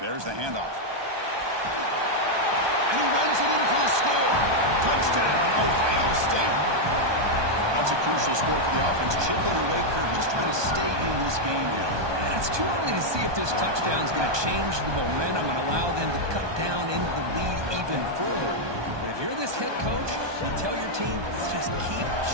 There's the handoff. And he runs it in for the score. Touchdown, Ohio State. That's a crucial score for the offense. Chipping away, Kirk, just trying to stay in this game here. And it's too early to see if this touchdown is going to change the momentum and allow them to cut down into the lead even further. But if you're this head coach, you tell your team, let's just keep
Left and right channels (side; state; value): left; late; 1.2 ms